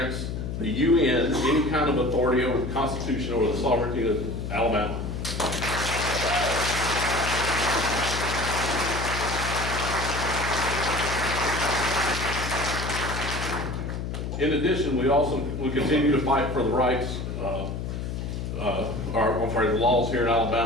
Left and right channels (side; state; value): left; noise; hum, 5 dB below the sound